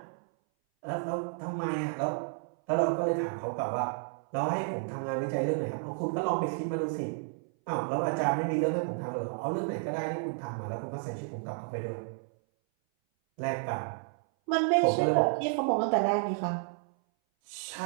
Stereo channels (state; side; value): silent; left; 57 dB below the other